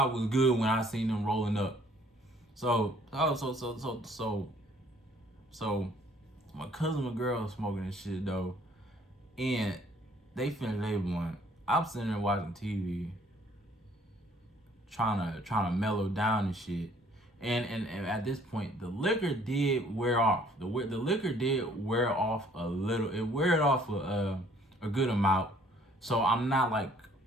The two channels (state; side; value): normal; both; correlation 0.59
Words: was good when I seen them rolling up. So my cousin and girl smoking and shit though. And they finished their blunt. I'm sitting there watching TV, trying to mellow down and shit. And at this point, the liquor did wear off. The liquor did wear off a little. It wear off a good amount. So I'm